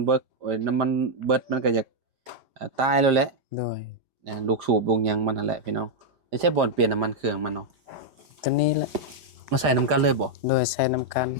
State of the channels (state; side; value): late; left; 5.0 ms